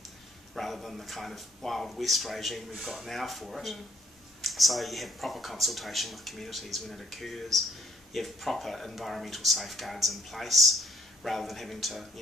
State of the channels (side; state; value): both; normal; correlation 0.65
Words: rather than the kind of Wild West regime we've got now for it. So you have proper consultation with communities when it occurs, you have proper environmental safeguards in place, rather than having to